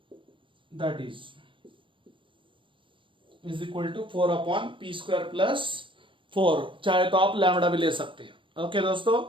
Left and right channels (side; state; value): left; late; 0.25 ms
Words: that is equal to 4/p square plus 4, चाहे तो आप लैम्बडा भी ले सकते हैं। ओके दोस्तों,